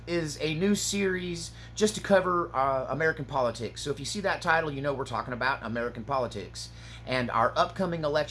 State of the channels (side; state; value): both; identical; correlation 1.00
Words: is a new series just to cover American politics. So if you see that title, you know we're talking about American politics and our upcoming